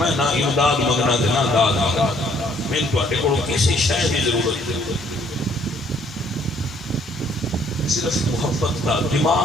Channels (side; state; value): both; normal; correlation 0.64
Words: نہ امداد مگنا دے نہ داد مگنا میں تو اٹھے کو کسی شے دی ضرورت ہے صرف محبت کا